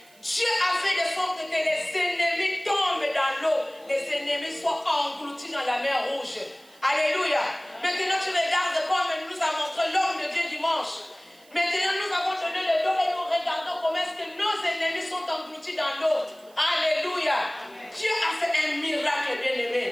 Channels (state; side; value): noise; right; hiss, 28 dB below the sound